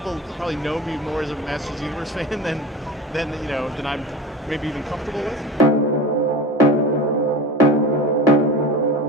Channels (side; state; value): both; normal; correlation 0.31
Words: probably know me more as a Masters of the Universe fan than I'm maybe even comfortable with.